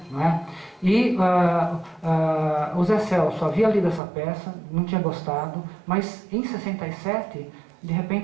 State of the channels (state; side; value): drops out; left; at 4.0 s